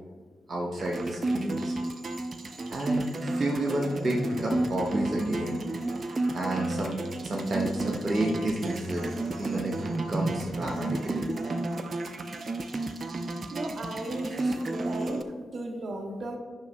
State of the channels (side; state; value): both; normal; correlation 0.90